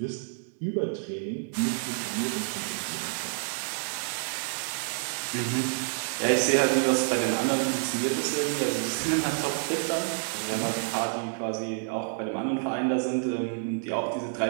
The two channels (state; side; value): silent; left; digital silence